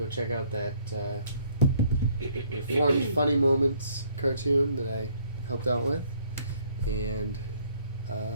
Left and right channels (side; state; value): both; inverted; correlation -0.64